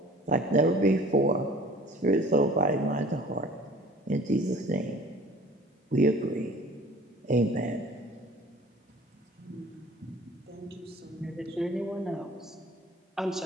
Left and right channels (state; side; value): normal; both; correlation 0.48